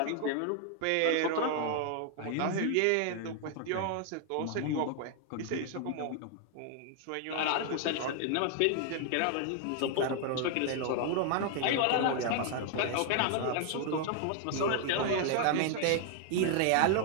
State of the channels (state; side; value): different; both; correlation 0.00